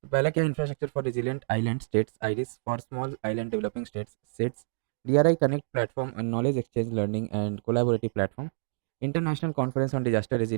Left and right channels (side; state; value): left; silent; digital silence